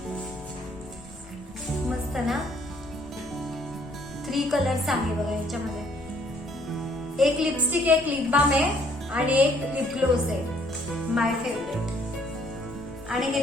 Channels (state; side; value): normal; both; correlation 0.64